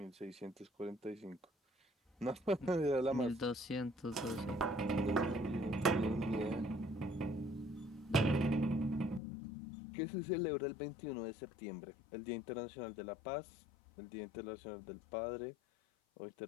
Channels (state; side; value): drops out; right; at 9.2 s